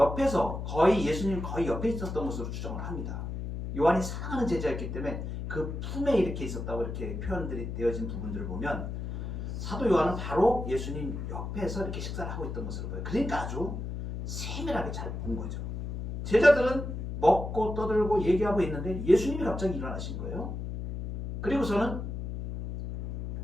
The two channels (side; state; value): left; noise; hum, 5 dB below the sound